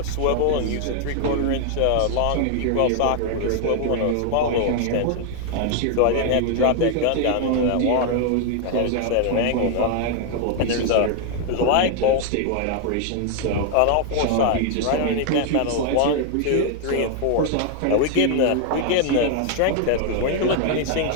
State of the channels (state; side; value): different; both; correlation 0.00